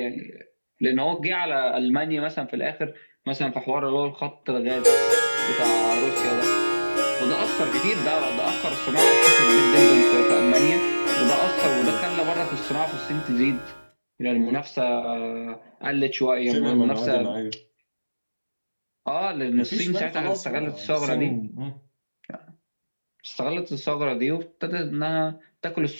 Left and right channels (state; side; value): inverted; both; correlation -1.00